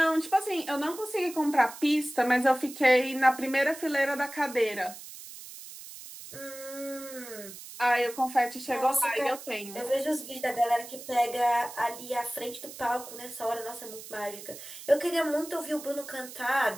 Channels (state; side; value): noise; right; hiss, 14 dB below the sound